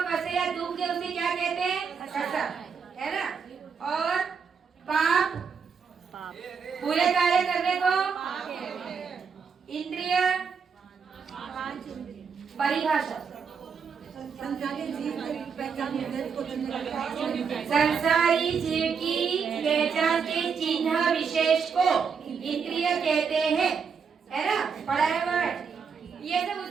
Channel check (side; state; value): left; quieter; 6.1 dB